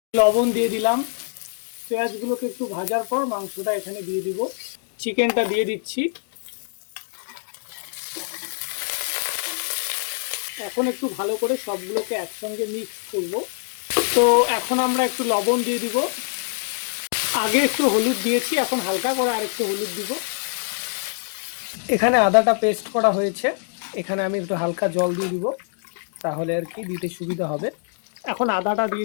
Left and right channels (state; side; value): silent; right; digital silence